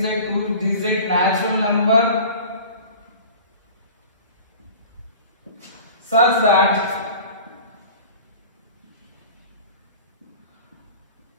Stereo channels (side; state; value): both; inverted; correlation -0.41